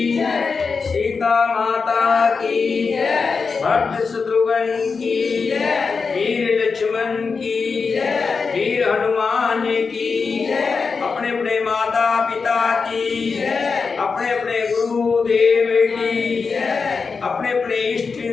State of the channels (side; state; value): right; quieter; 5.0 dB